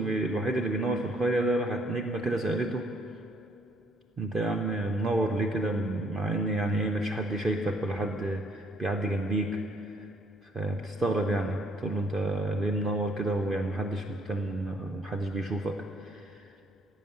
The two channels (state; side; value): normal; both; correlation 0.65